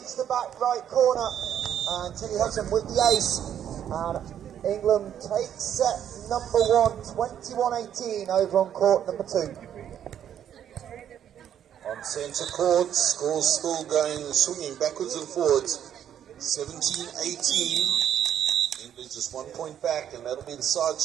the back right corner, and Tilly Hudson with the ace. And England takes set number 1, 21-18 over on court number 2. On centre court, scores still going, swinging backwards and forwards. 17-18. England just 1 point back, and that'll be the side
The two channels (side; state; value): left; quieter; 9.8 dB